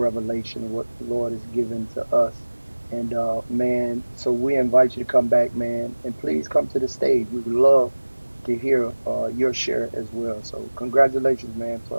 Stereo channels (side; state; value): both; inverted; correlation -1.00